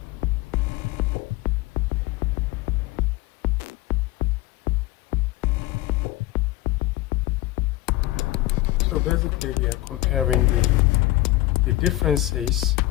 So basically we are comparing the differences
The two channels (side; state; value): right; quieter; 17.3 dB